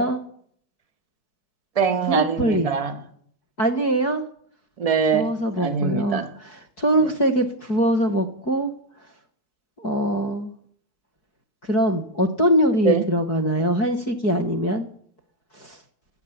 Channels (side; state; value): right; late; 4.7 ms